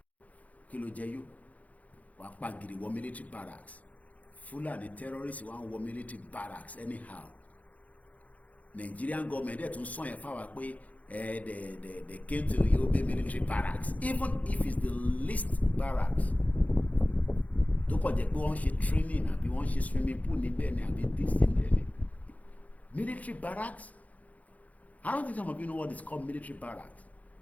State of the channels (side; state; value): right; late; 0.072 ms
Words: kí ló jẹ yó wọ́n pa gidi wọ́ military barracks. Fulani terrorists wọ́n wọ military barracks anyhow. Nigerian government dẹ̀ tún sọ yẹn fáwa pé they came to Yobe military barracks even if it's the least barracks. Tó kọ̀ jẹ́ pé wọ́n ṣe training àbí wọ́n ṣe swimming pool níbẹ̀ ni àbí this níbẹ̀ ni. Military barracks. I don't think some of you know what is called military barracks.